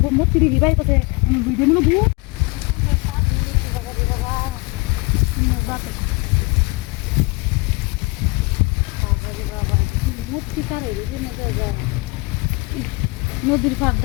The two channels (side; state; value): right; quieter; 25.9 dB